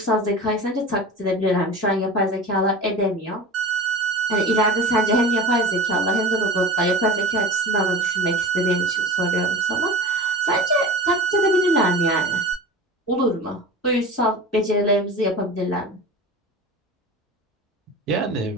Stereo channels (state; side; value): normal; both; correlation 0.32